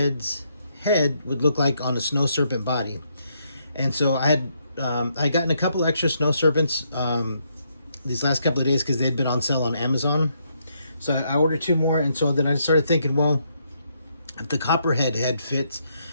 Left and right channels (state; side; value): inverted; both; correlation -0.75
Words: head would look like on a snow serpent body. And so I gotten a couple extra snow serpents these last couple of days because they'd been on sale on Amazon. So I ordered 2 more, and so then I started thinking, well, if the Copperhead head fits,